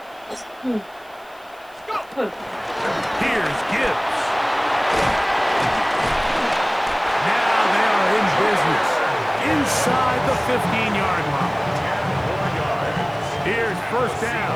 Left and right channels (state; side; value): noise; right; hiss, 29 dB below the sound